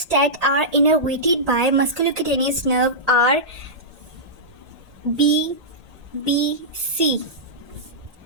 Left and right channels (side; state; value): left; late; 1.8 ms